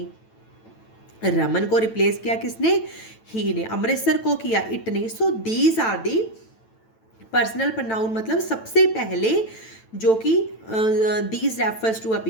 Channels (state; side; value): late; right; 9.0 ms